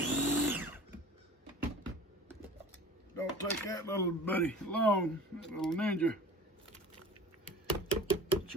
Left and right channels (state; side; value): normal; both; correlation 0.40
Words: Don't take that little buddy along, that little ninja.